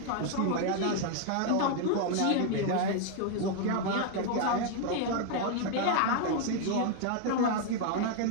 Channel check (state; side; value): different; both; correlation 0.00